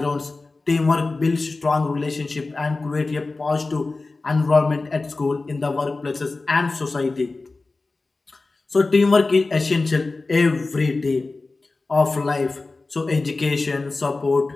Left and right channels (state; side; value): quieter; right; 3.5 dB